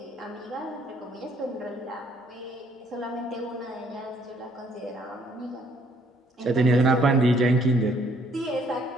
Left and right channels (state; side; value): normal; both; correlation 0.64